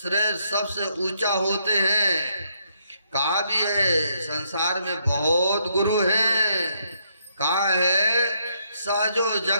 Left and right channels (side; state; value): both; inverted; correlation -0.74